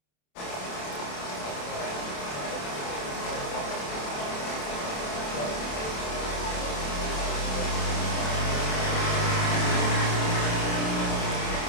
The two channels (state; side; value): late; right; 27 ms